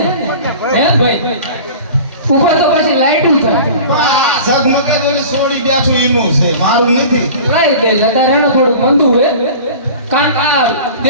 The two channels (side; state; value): both; inverted; correlation -0.38